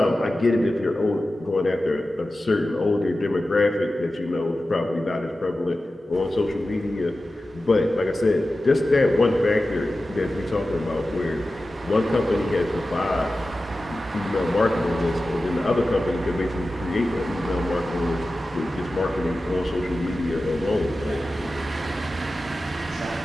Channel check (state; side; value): normal; both; correlation 0.94